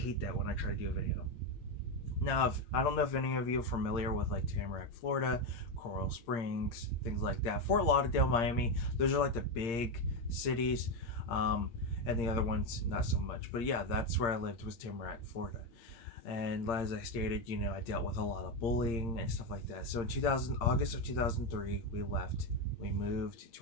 that when I try to do a video. Now, I don't know if any of you are familiar with like Tamarack, Florida, Coral Springs, things like that. Fort Lauderdale, Miami, those are like the big cities, and the other ones not so much. But yeah, that's where I lived, was Tamarack, Florida. And as I stated, I dealt with a lot of bullying and stuff like that. So in August of 2003, we left. We moved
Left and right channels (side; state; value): right; late; 8.7 ms